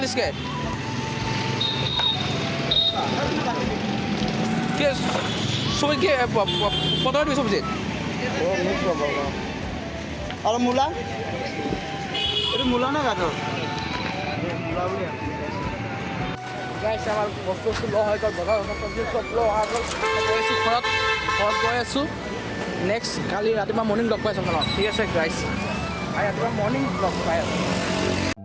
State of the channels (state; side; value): identical; both; correlation 1.00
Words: কি চব্জি কি পটল দিবি চব্জিত? আৰু মূলা? এইটো মূলা নে গাজৰ? মূলা বুলি গাইছে আমাৰ বস্তু লোৱা হৈ গ'ল, বজাৰ চব্জি চব লোৱা হৈ গ'ল। গৈ আছোঁ ঘৰত গৈ আছোঁ। নেক্সট কালি ৰাতিপুৱা মৰ্ণিং লগ পাই আছোঁ আপোনাক, ঠিক আছে গাইছ? আৰু ৰাতিপুৱা মৰ্ণিং লগ পাই আছোঁ।